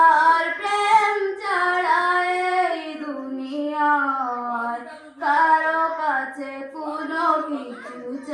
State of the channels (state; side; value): identical; both; correlation 1.00